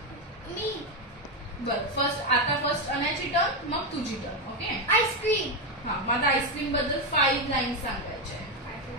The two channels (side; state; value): both; normal; correlation 0.08